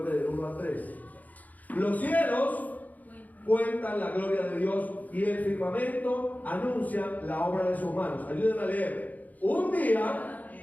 del 1 al 3. Los cielos cuentan la gloria de Dios y el firmamento anuncia la obra de sus manos. Ayúdenme a leer. Un día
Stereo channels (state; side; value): late; right; 0.079 ms